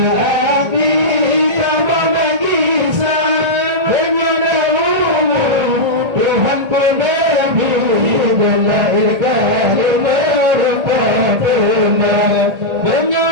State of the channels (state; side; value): late; left; 1.8 ms